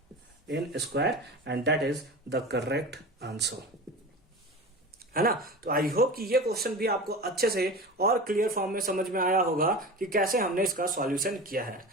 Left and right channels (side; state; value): both; normal; correlation 0.31